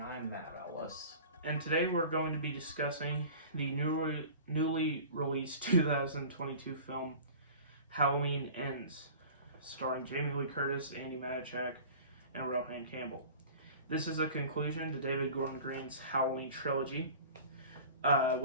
I'm Matt Ellis. And today we're going to be discussing the newly released 2022 film Halloween Ends, starring Jamie Lee Curtis, Andy Matichak, and Rohan Campbell. This is a conclusion to David Gordon Green's Halloween trilogy,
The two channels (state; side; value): inverted; both; correlation -0.41